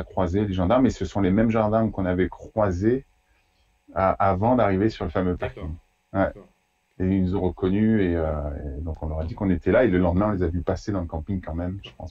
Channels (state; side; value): identical; both; correlation 1.00